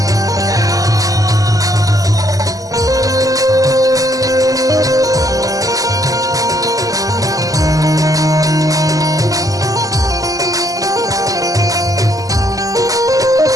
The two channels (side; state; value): left; late; 0.17 ms